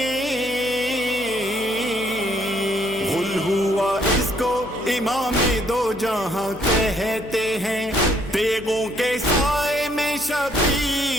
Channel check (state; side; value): noise; left; hum, 19 dB below the sound